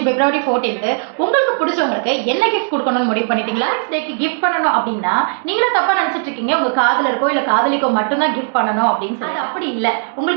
பிப்ரவரி 14th உங்களுக்கு பிடிச்சவங்களுக்கு என்ன கிஃப்ட் குடுக்கணும்னு முடிவு பண்ணிட்டீங்களா? டேக்கு கிஃப்ட் பண்ணணும் அப்படின்னா, நீங்களே தப்பா நினைச்சிட்டு இருக்கீங்க. உங்க காதலருக்கோ, இல்ல காதலிக்கோ மட்டும் தான் கிஃப்ட் பண்ணணும் அப்படின்னு சொல்லி. அது அப்படி இல்ல.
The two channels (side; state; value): left; silent; 63 dB below the other